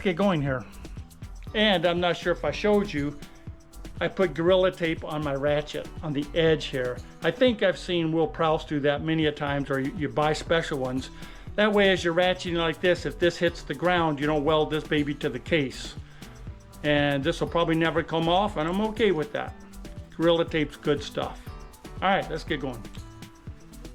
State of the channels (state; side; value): identical; both; correlation 1.00